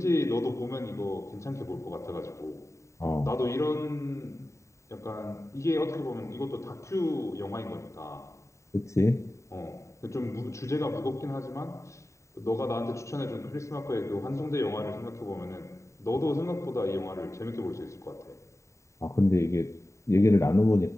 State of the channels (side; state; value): right; late; 0.14 ms